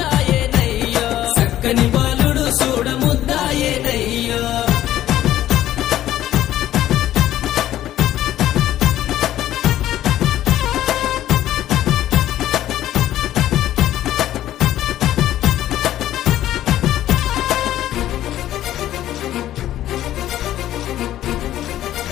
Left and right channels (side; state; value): right; quieter; 13.0 dB